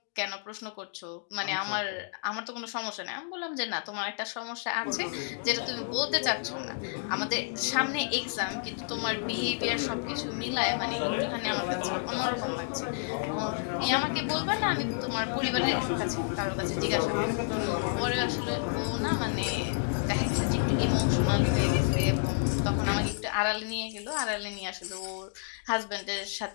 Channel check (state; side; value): silent; right; digital silence